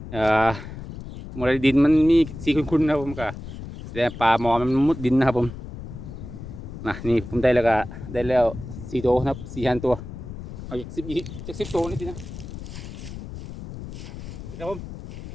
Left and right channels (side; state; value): left; noise; rumble, 11 dB below the sound